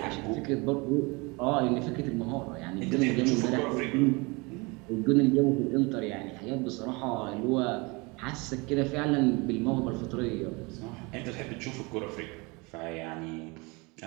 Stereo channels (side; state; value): left; quieter; 27.2 dB